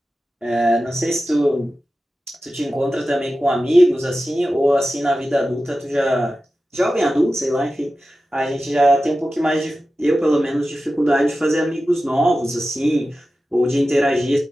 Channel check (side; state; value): both; normal; correlation 0.94